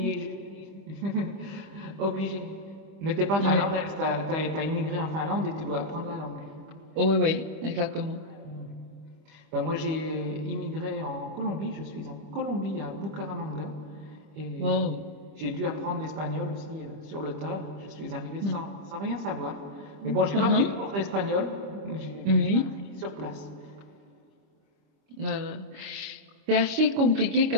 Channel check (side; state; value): left; late; 25 ms